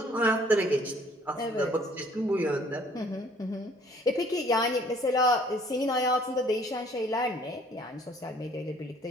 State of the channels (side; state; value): both; normal; correlation 0.58